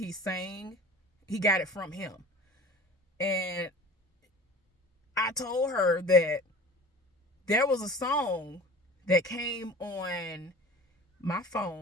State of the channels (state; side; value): normal; both; correlation 0.42